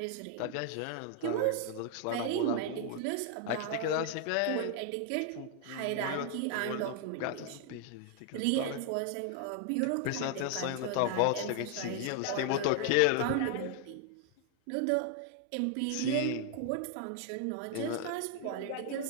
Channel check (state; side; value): different; both; correlation 0.00